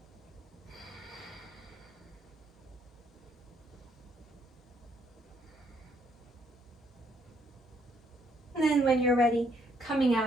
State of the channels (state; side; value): normal; both; correlation 0.70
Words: And then when you're ready, coming